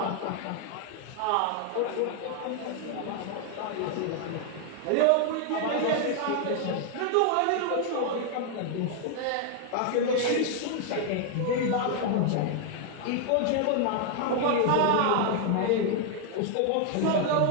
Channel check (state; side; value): different; both; correlation 0.00